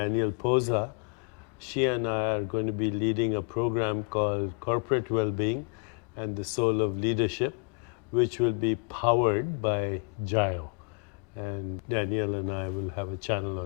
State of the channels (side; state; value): right; quieter; 38.5 dB